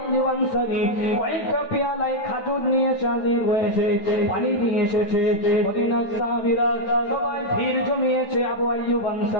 আনসারী কয়েকটা পেয়ালায় খাজুর নিয়ে হাজির হয়েছে, পানি নিয়ে এসেছে। মদিনার সাহাবীরা সবাই ভিড় জমিয়েছে আবু আইয়ুব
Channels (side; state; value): right; late; 9.1 ms